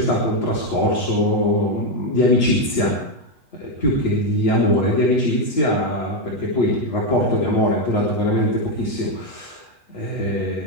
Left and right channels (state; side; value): late; right; 8.2 ms